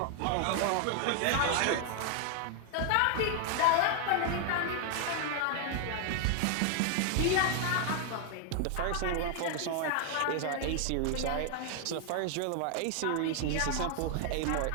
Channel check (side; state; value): both; different; correlation 0.00